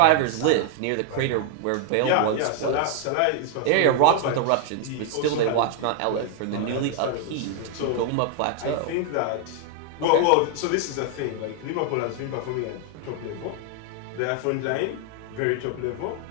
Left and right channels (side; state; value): both; different; correlation 0.00